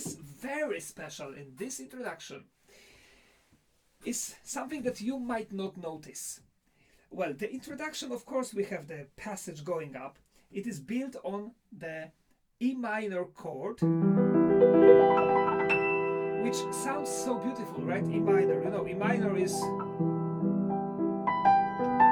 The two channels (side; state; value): both; identical; correlation 1.00